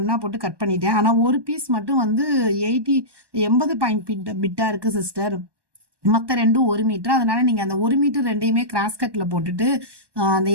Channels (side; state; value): left; late; 1.2 ms